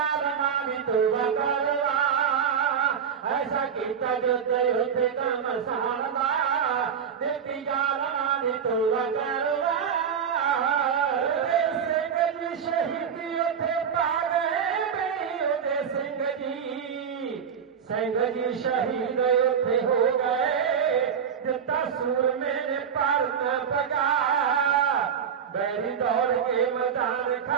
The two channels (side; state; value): left; quieter; 7.4 dB